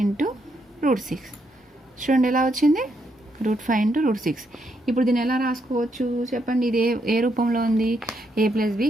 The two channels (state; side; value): normal; both; correlation 0.77